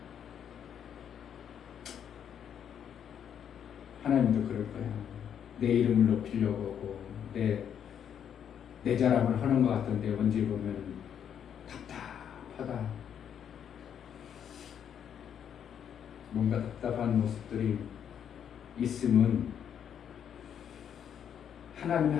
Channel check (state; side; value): quieter; right; 8.7 dB